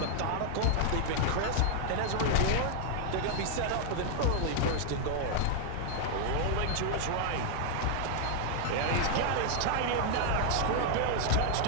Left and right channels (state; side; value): different; both; correlation -0.01